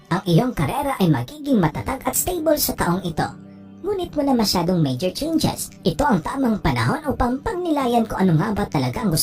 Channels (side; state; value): both; identical; correlation 1.00